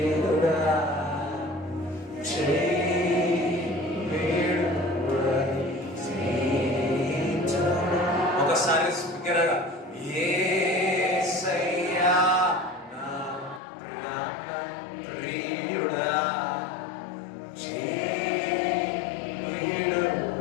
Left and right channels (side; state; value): right; drops out; at 13.6 s